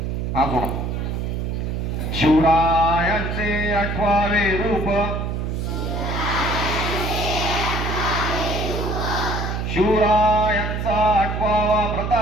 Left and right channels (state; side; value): noise; right; hum, 2 dB below the sound